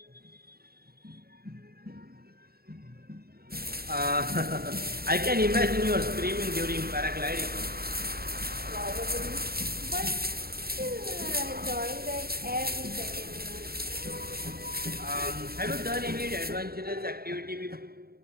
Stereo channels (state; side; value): late; left; 0.45 ms